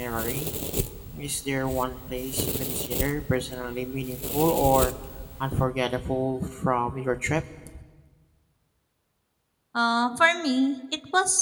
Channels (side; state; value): both; identical; correlation 1.00